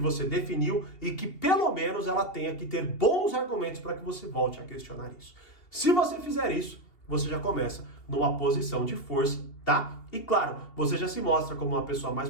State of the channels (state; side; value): late; right; 2.8 ms